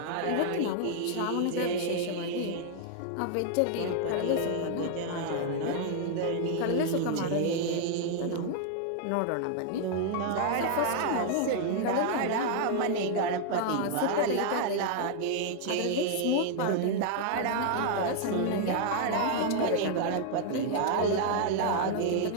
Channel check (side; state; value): both; different; correlation 0.00